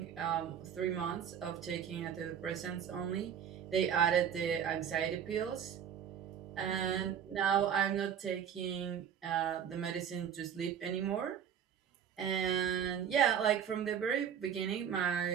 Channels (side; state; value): left; quieter; 8.4 dB